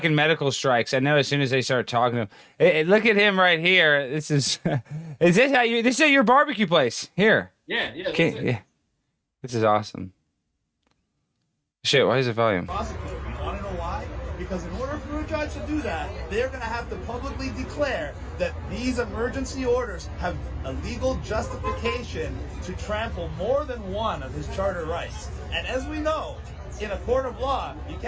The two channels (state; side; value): identical; both; correlation 1.00